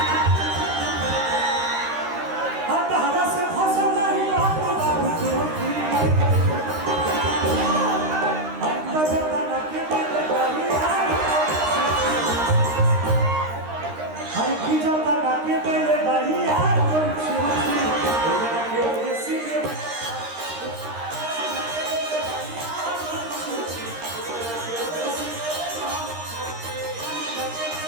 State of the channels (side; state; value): left; late; 13 ms